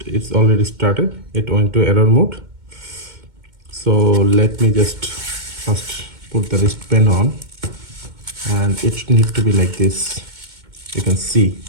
it's already started. It went to error mode. So let me just first put the wristband on, and it needs to be like this. You can see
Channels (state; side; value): late; left; 2.2 ms